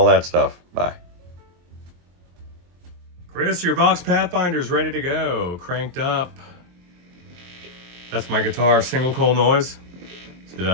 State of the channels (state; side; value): late; left; 23 ms